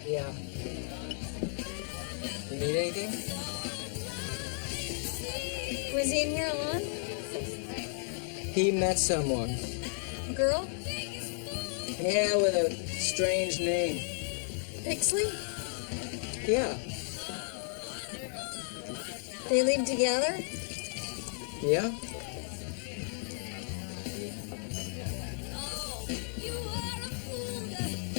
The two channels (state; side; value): silent; right; 55 dB below the other